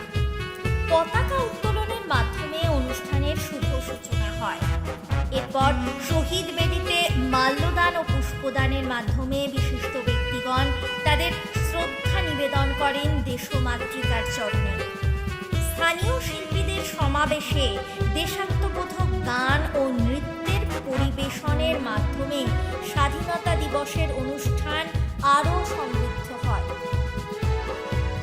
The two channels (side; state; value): both; identical; correlation 1.00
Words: পতাকা উত্তোলনের মাধ্যমে অনুষ্ঠানের শুভ সূচনা হয়। এরপর শহীদ বেদিতে মাল্যদান ও পুষ্পদানের মাধ্যমে বিশিষ্ট ব্যক্তিগণ তাদের শ্রদ্ধা নিবেদন করেন দেশমাতৃকার চরণে। স্থানীয় শিল্পীদের সমাবেশে দেশাত্মবোধক গান ও নৃত্যের পরিবেশনের মাধ্যমে স্বাধীনতা দিবসের অনুষ্ঠান আরও সমৃদ্ধ হয়।